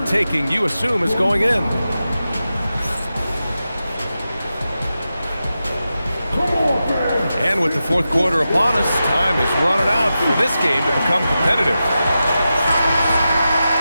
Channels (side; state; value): both; inverted; correlation -0.91